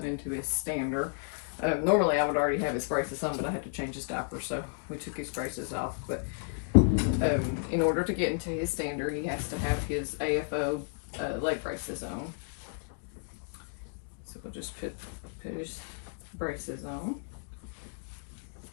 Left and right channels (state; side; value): silent; right; digital silence